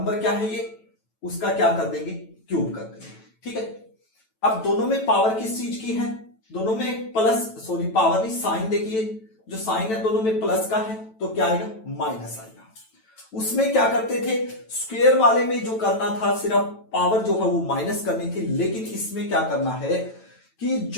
क्या है ये, उसका क्या कर देंगे क्यूब कर देंगे। ठीक है, अब दोनों में पावर किस चीज की है, दोनों में प्लस, सॉरी पावर नहीं साइन, देखिए जो साइन है दोनों में प्लस का है तो क्या आएगा माइनस आएगा। उसमें क्या करते थे, स्क्वायर वाले में जो करना था सिर्फ पावर जो है वो माइनस करनी थी, लेकिन इसमें क्या करना है कि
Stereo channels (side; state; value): right; late; 9.1 ms